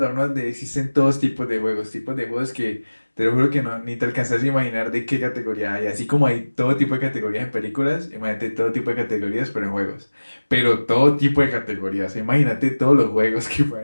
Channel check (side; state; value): both; inverted; correlation -1.00